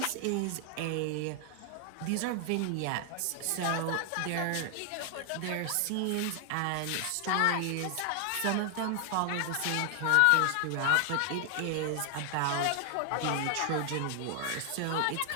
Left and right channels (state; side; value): different; both; correlation 0.00